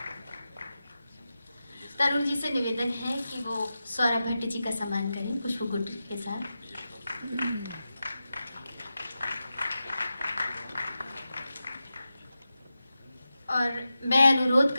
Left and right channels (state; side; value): inverted; both; correlation -0.92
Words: तरुण जी से निवेदन है कि वो सौरभ भट्ट जी का सम्मान करें पुष्पगुच्छ के साथ। और मैं अनुरोध